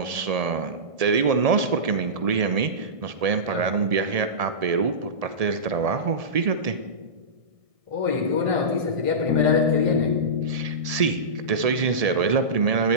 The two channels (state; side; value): late; left; 1.7 ms